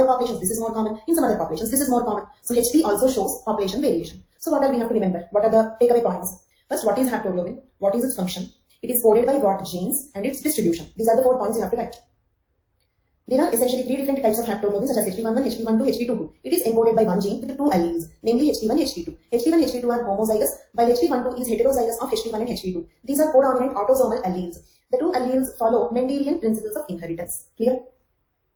populations this is more common, in some other populations this is more common. So HP also shows population variation. So what are we have to remember? What are the takeaway points? First, what is haptoglobin? What is its function? It is coded by what genes and its distribution. These are the 4 points you have to write. There are essentially 3 different types of haptoglobin such as HP11, HP12, HP22. It is encoded by one gene with 2 alleles, namely HP1, HP2. HP1 and HP2 are homozygous, while HP12 is heterozygous of HP1 and HP2. These are codominant autosomal alleles. The 2 alleles follow Mendelian principles of inheritance. Clear?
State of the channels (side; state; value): both; identical; correlation 1.00